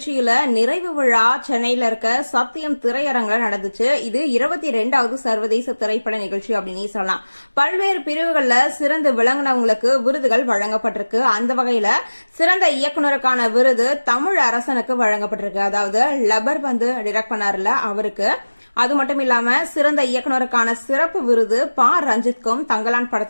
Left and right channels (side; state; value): both; inverted; correlation -1.00